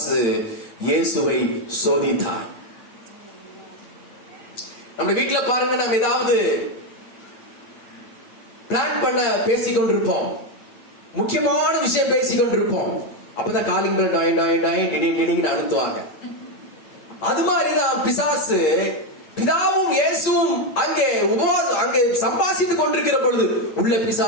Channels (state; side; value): late; right; 8.5 ms